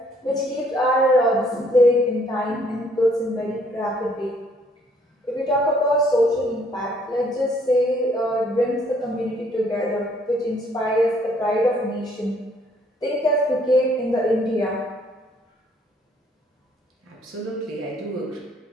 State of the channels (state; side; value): normal; both; correlation 0.64